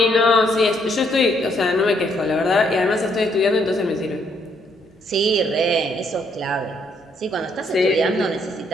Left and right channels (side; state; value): both; normal; correlation 0.71